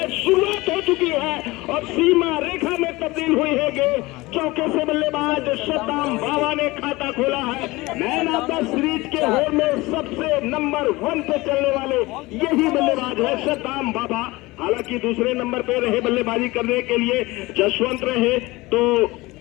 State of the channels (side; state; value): right; quieter; 21.2 dB